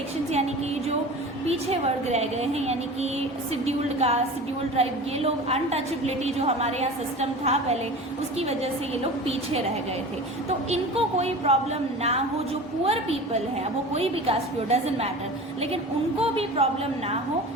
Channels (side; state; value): both; normal; correlation 0.35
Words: यानी कि जो पीछे वर्ग रह गए हैं, यानी कि शेड्यूल्ड कास्ट, शेड्यूल्ड ट्राइब, ये लोग अनटचेबिलिटी जो हमारे यहाँ सिस्टम था पहले, उसकी वजह से ये लोग पीछे रह गए थे. तो इनको कोई प्रॉब्लम ना हो. जो पुअर पीपल है, वो कोई भी कास्ट हो, डजेंट मैटर, लेकिन उनको भी प्रॉब्लम ना हो,